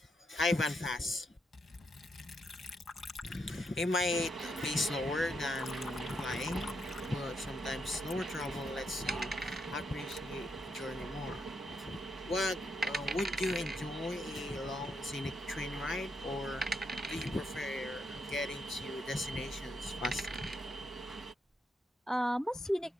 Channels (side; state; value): both; normal; correlation 0.79